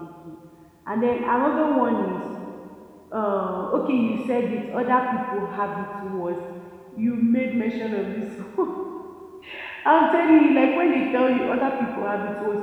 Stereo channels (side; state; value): both; identical; correlation 1.00